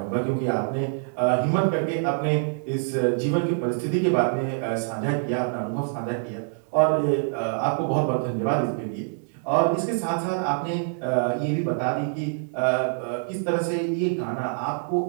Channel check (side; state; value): left; silent; digital silence